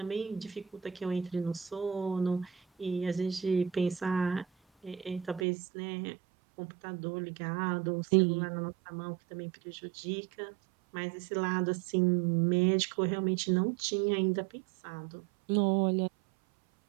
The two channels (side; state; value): left; drops out; at 5.5 s